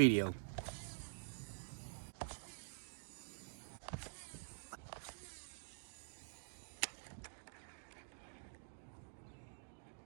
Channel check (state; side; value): silent; left; digital silence